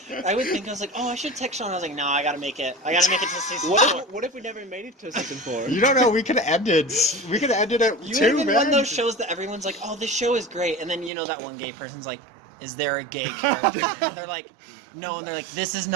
I would think, I was like, oh, I should text Sean. I was like, no, I gotta make it. I gotta make it to season 4. What if we never made it to season 4? You don't know, we could have ended. We could have ended it You too, have been man. one of those shows that everyone's like, oh, this show is great. And then, you know, that one gay person's like, is there a gay character? And they're like, no. And they're like, this is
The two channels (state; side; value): drops out; left; at 11.1 s